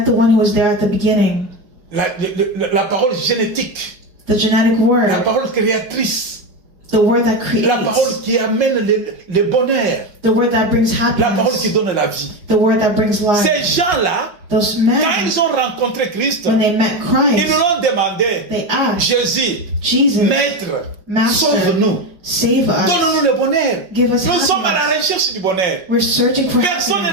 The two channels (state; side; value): late; left; 5.5 ms